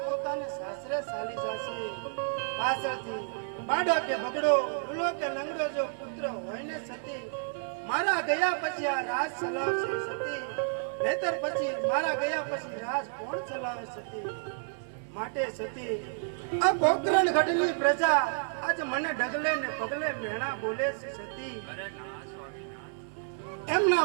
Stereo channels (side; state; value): left; silent; 57 dB below the other